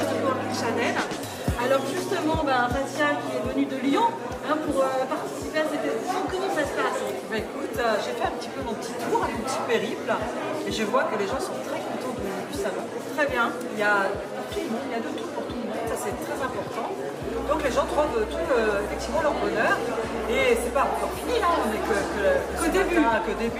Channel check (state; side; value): identical; both; correlation 1.00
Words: du Coworking Channel. Alors justement, Fatia qui est venue de Lyon pour participer à cette édition, comment ça se passe? Écoute, j'ai fait un petit peu mon petit tour, un petit périple, et je vois que les gens sont très contents du salon. Très bien. Il y a tout le monde, il y a de tout pour tout le monde, ça c'est très important. Donc les gens trouvent tout effectivement leur bonheur, et c'est pas encore fini, on n'est que